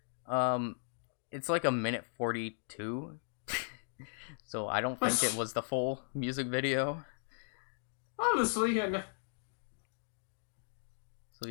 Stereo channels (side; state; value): right; silent; digital silence